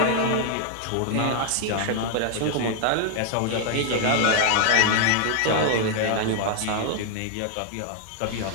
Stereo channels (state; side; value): different; both; correlation 0.00